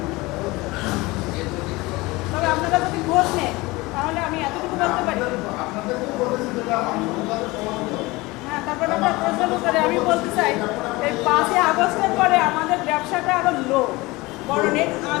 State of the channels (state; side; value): quieter; right; 22.0 dB